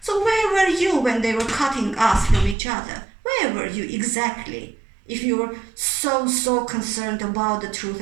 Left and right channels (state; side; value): drops out; left; at 2.6 s